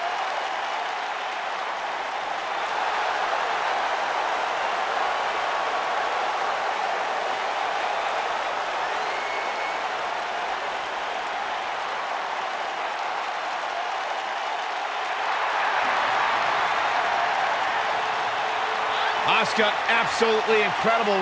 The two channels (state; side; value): identical; both; correlation 1.00